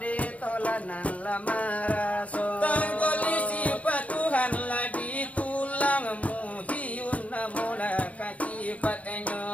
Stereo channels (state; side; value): late; right; 0.067 ms